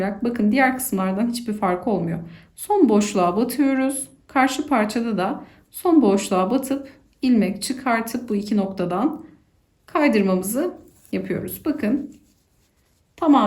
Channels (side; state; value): both; identical; correlation 1.00